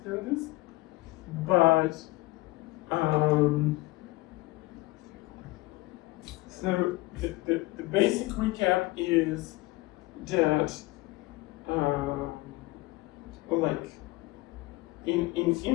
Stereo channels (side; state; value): right; quieter; 20.6 dB